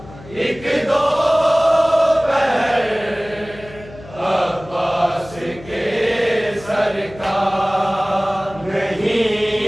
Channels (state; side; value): noise; left; hum, 18 dB below the sound